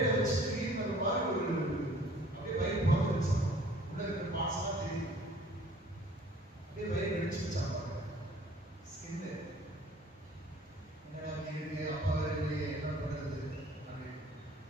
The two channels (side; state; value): both; normal; correlation 0.53